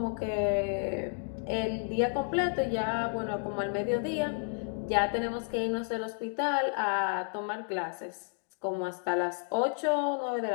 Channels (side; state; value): right; silent; 57 dB below the other